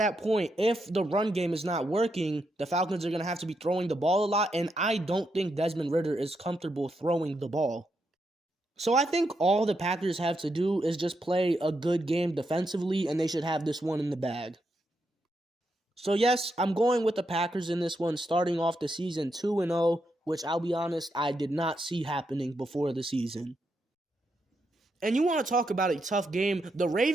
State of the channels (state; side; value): normal; both; correlation 0.82